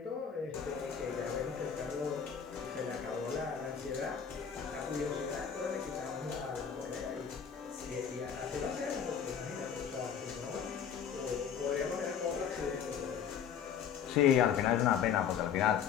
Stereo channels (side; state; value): right; quieter; 7.9 dB